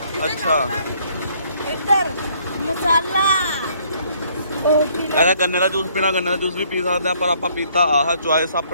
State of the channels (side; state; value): both; inverted; correlation -0.64